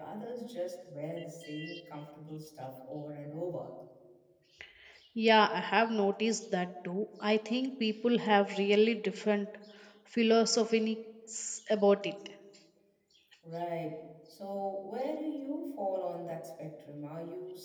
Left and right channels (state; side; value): identical; both; correlation 1.00